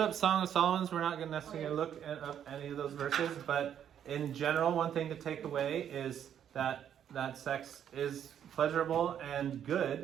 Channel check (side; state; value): left; quieter; 9.4 dB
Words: Song of Solomon's. We're not going to necessarily look up any of those verses, but in general, one thing to take away is that sex is pleasurable and